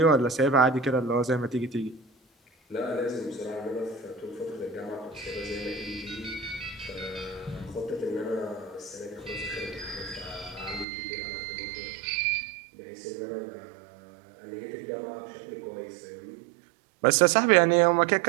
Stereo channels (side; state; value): left; drops out; at 10.9 s